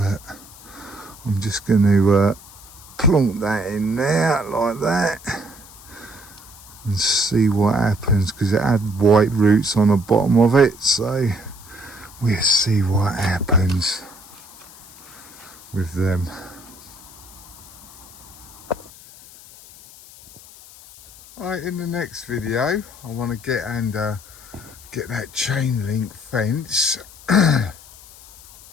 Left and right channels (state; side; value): noise; left; hiss, 20 dB below the sound